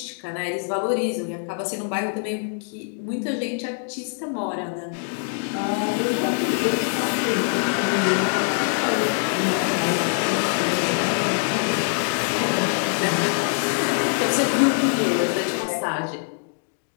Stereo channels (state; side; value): silent; right; 57 dB below the other